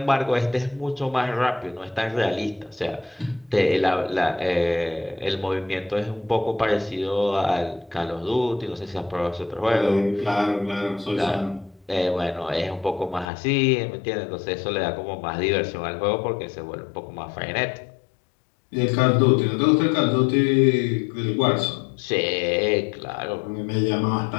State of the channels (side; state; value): right; drops out; at 13.2 s